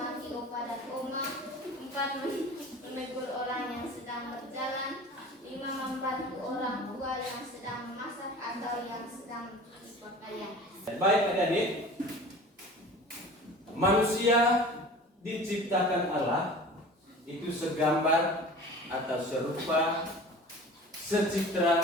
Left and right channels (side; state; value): both; normal; correlation 0.40